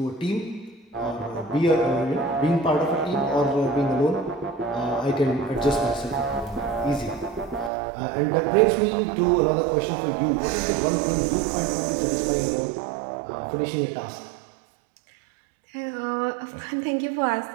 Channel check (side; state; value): left; drops out; at 7.7 s